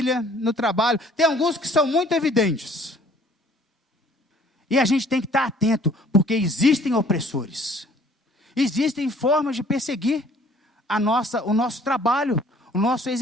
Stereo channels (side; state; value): both; normal; correlation 0.56